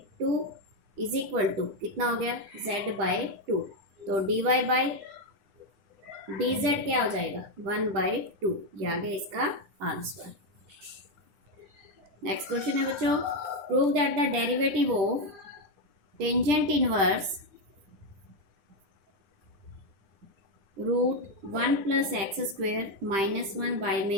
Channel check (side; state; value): left; late; 10 ms